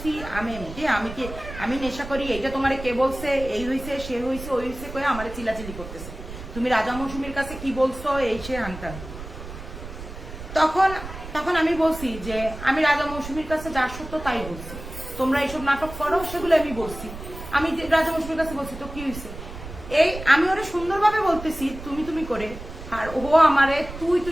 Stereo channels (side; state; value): right; noise; rumble, 12 dB below the sound